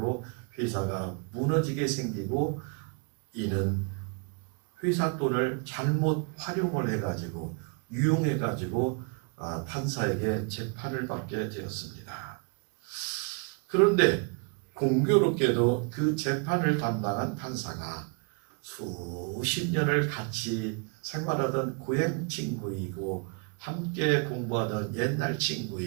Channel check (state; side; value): quieter; left; 35.4 dB